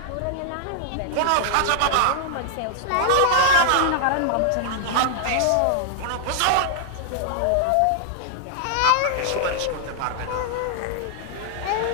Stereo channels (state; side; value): different; both; correlation 0.00